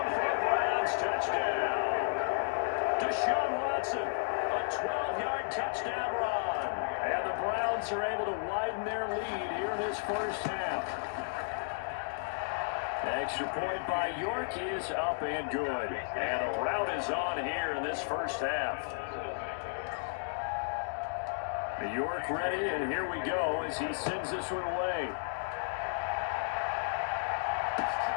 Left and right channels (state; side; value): silent; right; digital silence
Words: for a Browns touchdown. Deshaun Watson, a 12-yard touchdown run. And the Browns are able to widen their lead here in this first half. Extra point by York is up and good. And a rout is on here in this first half. York ready, and here we go as he sends this one away.